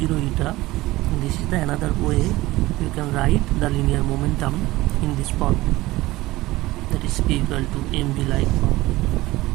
eta, this is the another way you can write the linear momentum in this form, that is p equal to mv like form.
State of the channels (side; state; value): left; quieter; 18.6 dB